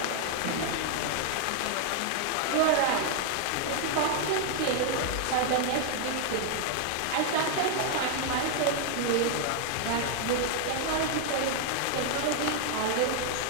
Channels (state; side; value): different; both; correlation 0.00